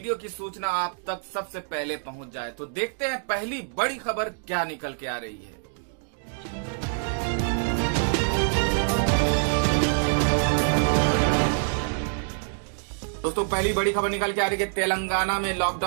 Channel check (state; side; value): silent; left; digital silence